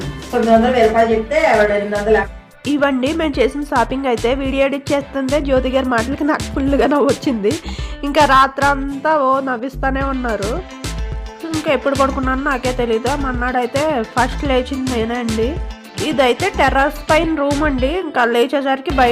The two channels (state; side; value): identical; both; correlation 1.00